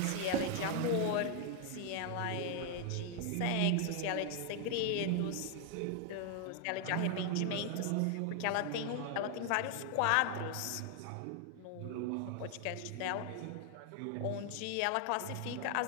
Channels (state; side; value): different; both; correlation 0.00